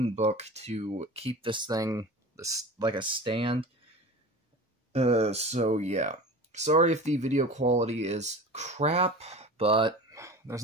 book to keep this thing like a stand. So yeah. Sorry if the video quality is crap, but there's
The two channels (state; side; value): normal; both; correlation 0.35